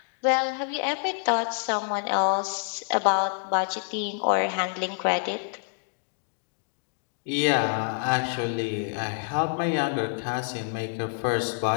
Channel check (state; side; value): silent; right; 60 dB below the other